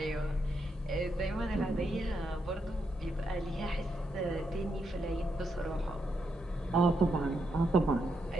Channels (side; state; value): both; normal; correlation 0.81